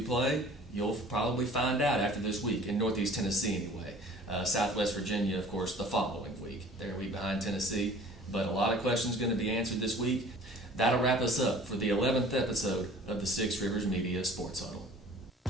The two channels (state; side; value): normal; both; correlation 0.48